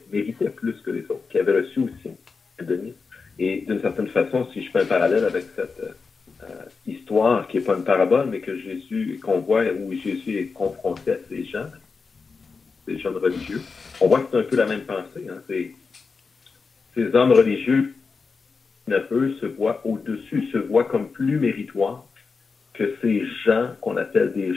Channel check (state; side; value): quieter; right; 4.7 dB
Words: plus que les autres, qui avaient reçu aussi un denier. Et d'une certaine façon, si je fais un parallèle avec cette histoire, qui n'est pas une parabole, mais qu'on voit où Jésus est confronté à ces gens religieux, on voit que c'est un peu la même pensée. Hein? Ces hommes religieux, eux, se voient au-dessus, se voient comme plus méritoires que ces gens qu'on appelle des